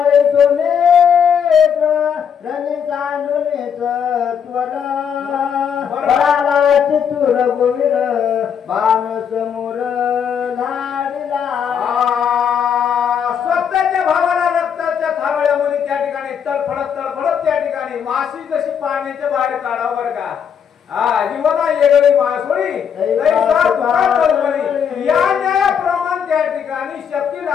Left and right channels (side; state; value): right; quieter; 7.7 dB